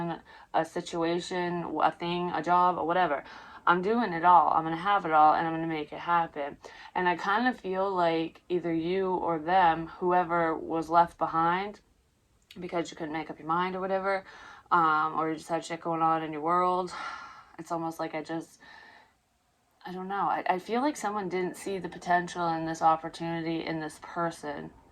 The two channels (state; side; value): identical; both; correlation 1.00